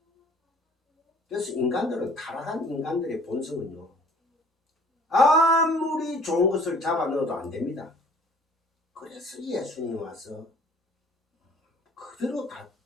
그래서 인간들은, 타락한 인간들의 본성은요, 아무리 좋은 것을 잡아 넣어도 안 됩니다. 그래서 예수님이 와서 그대로 다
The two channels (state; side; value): normal; both; correlation 0.53